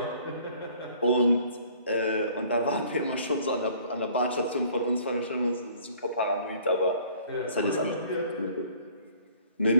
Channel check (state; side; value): inverted; both; correlation -0.55